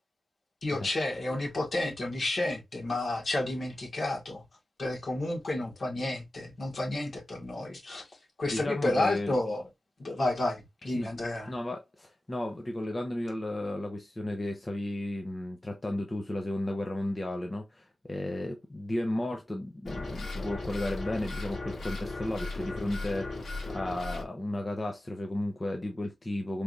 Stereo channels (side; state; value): both; normal; correlation 0.94